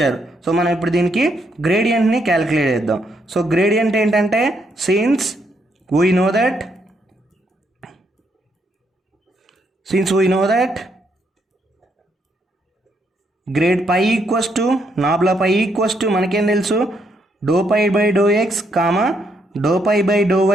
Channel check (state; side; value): normal; both; correlation 0.75